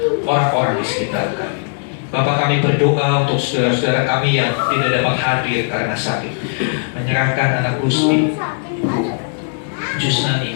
orang-orang di sekitar kami. Bapak, kami berdoa untuk saudara-saudara kami yang tidak dapat hadir karena sakit. Menyerahkan anak Gusti Jusnani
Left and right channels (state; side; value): silent; right; 64 dB below the other